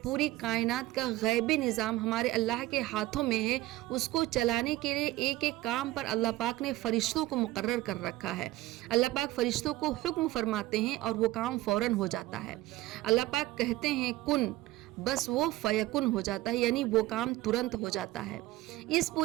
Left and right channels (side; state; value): left; quieter; 17.2 dB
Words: پوری کائنات کا غیبی نظام ہمارے اللہ کے ہاتھوں میں ہے، اس کو چلانے کے لیے ایک ایک کام پر اللہ پاک نے فرشتوں کو مقرر کر رکھا ہے۔ اللہ پاک فرشتوں کو حکم فرماتے ہیں اور وہ کام فوراً ہو جاتا ہے۔ اللہ پاک کہتے ہیں کن، بس وہ فیکن ہو جاتا ہے، یعنی وہ کام ترنت ہو جاتا ہے۔ اس